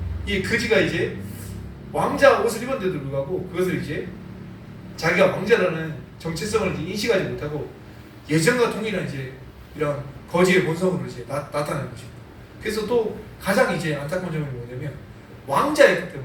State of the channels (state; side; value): identical; both; correlation 1.00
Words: 이 거지가 이제 왕자 옷을 입었는데도 불구하고 그것을 이제 자기가 왕자라는 정체성을 이제 인식하지 못하고 예전과 동일한 이제 이런 거지의 본성으로 이제 나타나는 것입니다. 그래서 또 가장 이제 안타까운 점이 뭐냐면 왕자였기